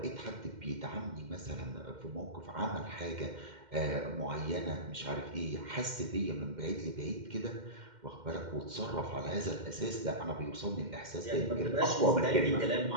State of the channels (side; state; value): left; late; 2.1 ms